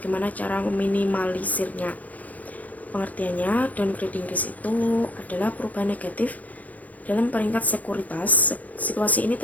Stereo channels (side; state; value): right; late; 0.076 ms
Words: cara meminimalisirnya. Pengertiannya, downgrading risk itu adalah perubahan negatif dalam peringkat sekuritas. Situasi ini